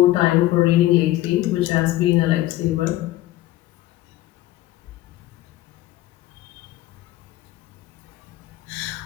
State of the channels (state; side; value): quieter; right; 15.8 dB